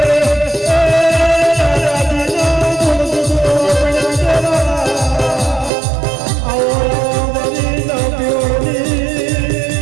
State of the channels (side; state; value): left; drops out; at 5.7 s